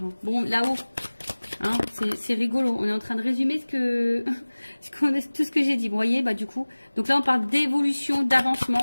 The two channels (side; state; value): both; inverted; correlation -1.00